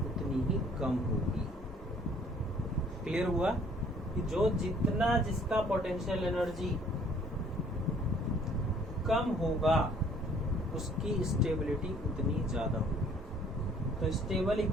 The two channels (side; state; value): both; normal; correlation 0.58